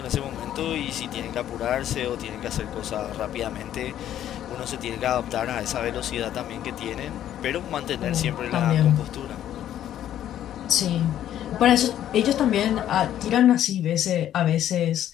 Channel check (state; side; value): quieter; right; 11.3 dB